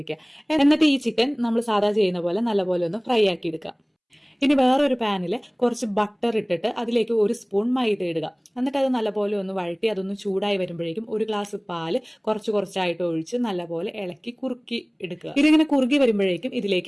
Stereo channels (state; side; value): identical; both; correlation 1.00